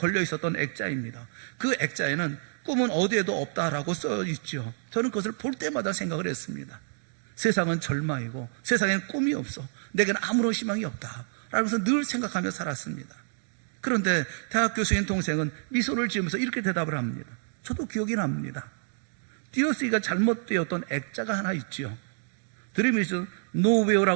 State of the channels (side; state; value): left; silent; digital silence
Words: 있었던 액자입니다. 그 액자에는 꿈은 어디에도 없다라고 써 있죠. 저는 그것을 볼 때마다 생각을 했습니다. 세상은 절망이고 세상엔 꿈이 없어. 내게는 아무런 희망이 없다. 라면서 늘 생각하며 살았습니다. 그런데 대학 교수인 동생은 미소를 지으면서 이렇게 대답을 합니다. 저도 기억이 납니다. 띄어쓰기가 잘못되었던 액자가 하나 있지요. Dream is